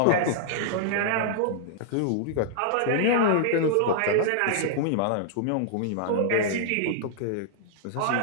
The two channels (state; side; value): different; both; correlation -0.01